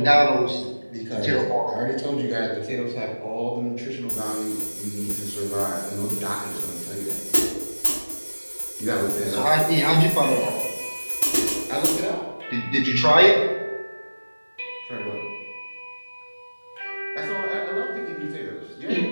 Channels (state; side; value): inverted; both; correlation -1.00